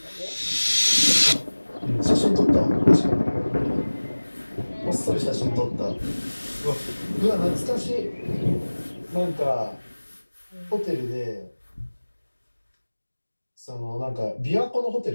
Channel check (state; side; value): inverted; both; correlation -1.00